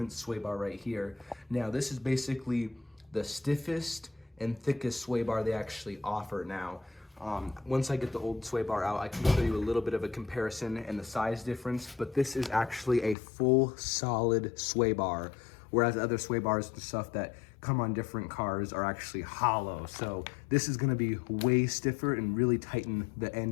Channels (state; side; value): drops out; right; at 13.2 s